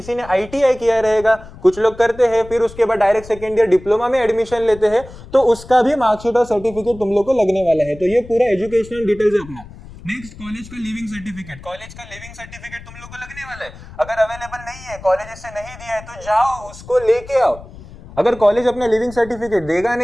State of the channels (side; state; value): left; noise; rumble, 17 dB below the sound